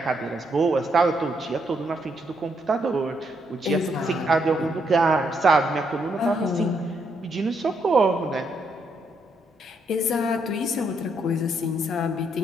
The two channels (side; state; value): both; normal; correlation 0.76